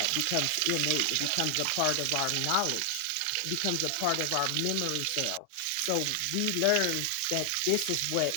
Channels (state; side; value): different; both; correlation 0.00